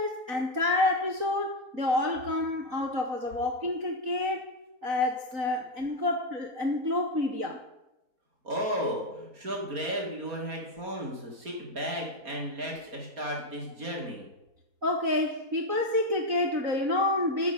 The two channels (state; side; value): late; left; 4.0 ms